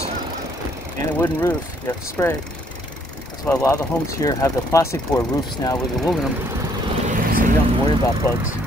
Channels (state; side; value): normal; both; correlation 0.66